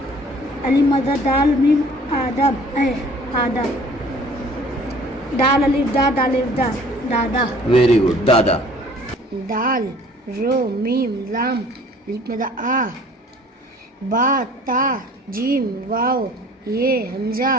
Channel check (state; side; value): normal; both; correlation 0.52